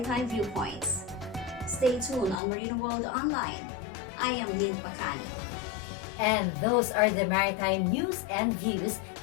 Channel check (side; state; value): right; drops out; at 2.4 s